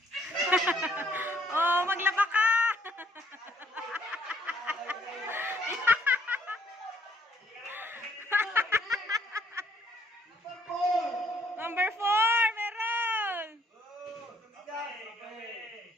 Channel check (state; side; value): normal; both; correlation 0.66